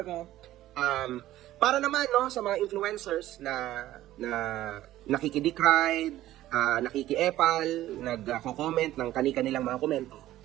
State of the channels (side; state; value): left; quieter; 14.5 dB